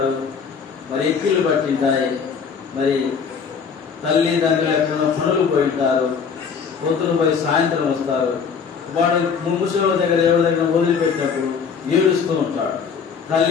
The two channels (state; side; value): quieter; right; 6.2 dB